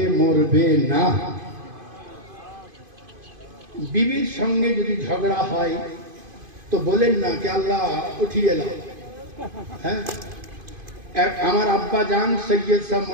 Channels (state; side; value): late; left; 2.5 ms